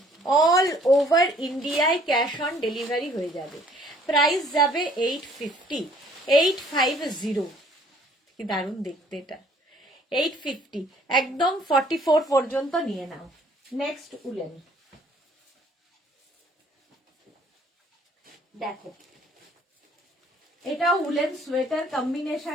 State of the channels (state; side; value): normal; both; correlation 0.59